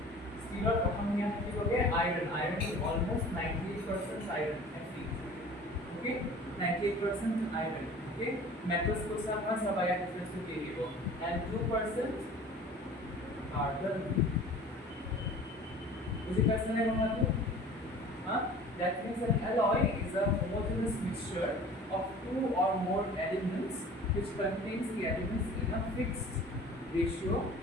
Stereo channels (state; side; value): normal; both; correlation 0.44